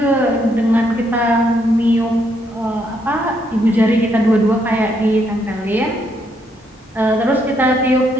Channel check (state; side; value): normal; both; correlation 0.74